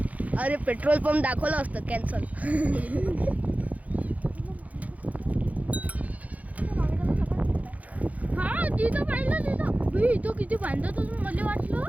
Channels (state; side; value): late; left; 0.072 ms